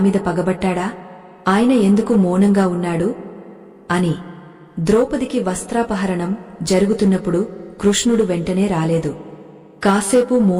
పగబట్టాడా? ఆయన ఎందుకు మౌనంగా ఉన్నాడు అని. ద్రౌపదికి వస్త్రాపహరణం జరుగుతున్నప్పుడు కృష్ణుడు వెంటనే రాలేదు. కాసేపు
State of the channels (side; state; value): both; identical; correlation 1.00